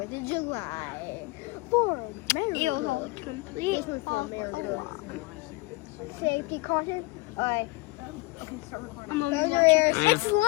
of July. It was all complete off safety caution. Alright. I'm gonna be watching. It's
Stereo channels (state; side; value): quieter; right; 22.5 dB